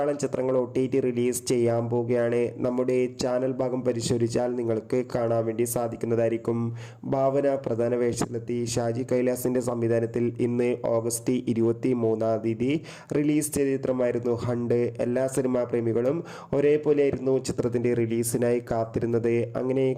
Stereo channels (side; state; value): both; identical; correlation 1.00